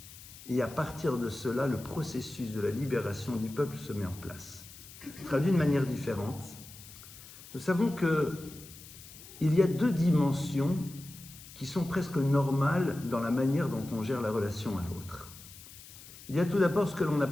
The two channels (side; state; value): left; noise; hiss, 17 dB below the sound